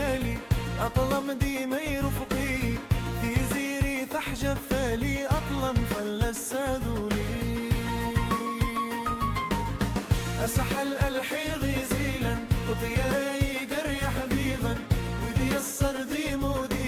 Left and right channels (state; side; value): identical; both; correlation 1.00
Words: أطلم ديما يرفقي في زيري تحجب فالي أطلم فلسادولي أسحل ألحي غيزيلا وطياي قري حبيبا ودي الصردي